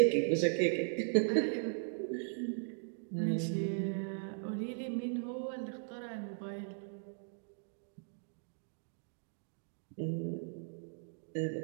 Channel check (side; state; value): left; silent; digital silence